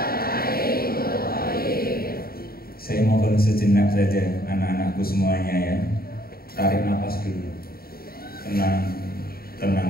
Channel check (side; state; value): right; late; 0.44 ms